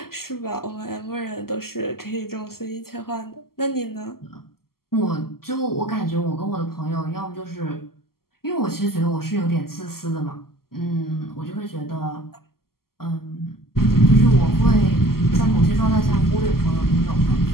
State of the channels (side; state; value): right; late; 0.93 ms